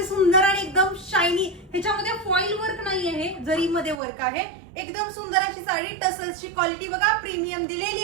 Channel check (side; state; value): left; drops out; at 4.0 s